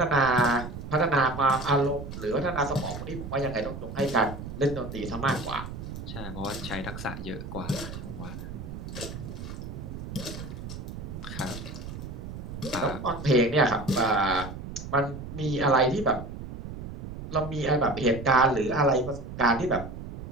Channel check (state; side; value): noise; right; rumble, 9 dB below the sound